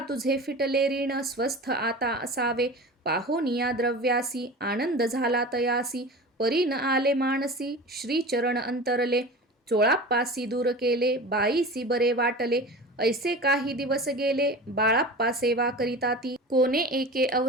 फिटले ऋण स्वस्थ आता असावे. पाहोनिया द्रव्यासी आनंद झाला तयासी. परी न आले मानसी श्रीचरण अंतरले. चोळाप्पासी दूर केले बाईसी बरे वाटले. ऐसे काही दिवस गेले बाळाप्पा सेवा करिता ती. कोणे एके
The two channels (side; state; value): both; normal; correlation 0.34